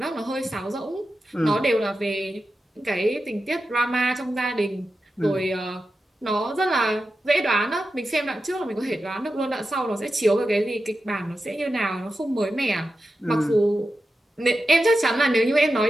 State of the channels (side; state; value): both; normal; correlation 0.91